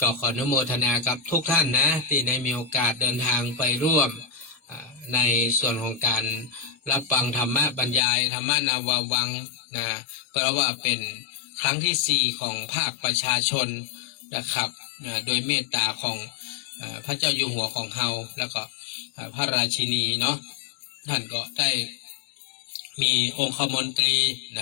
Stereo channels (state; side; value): drops out; right; at 8.0 s